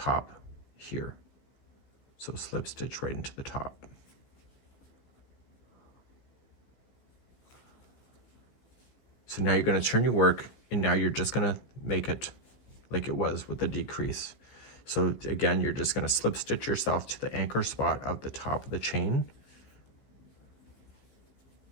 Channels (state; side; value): late; right; 15 ms